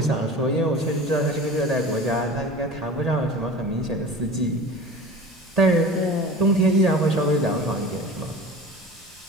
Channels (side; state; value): both; normal; correlation 0.37